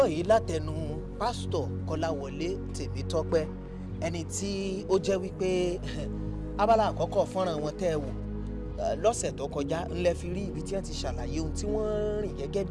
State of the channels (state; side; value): identical; both; correlation 1.00